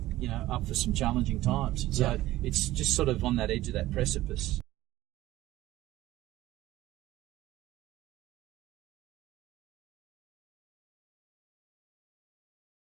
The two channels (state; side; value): quieter; left; 16.0 dB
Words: up for some challenging times. So it's just sort of on that edge of that precipice.